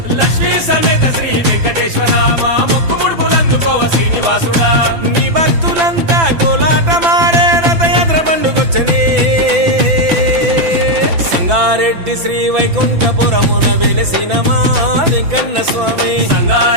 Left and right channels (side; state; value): left; late; 6.0 ms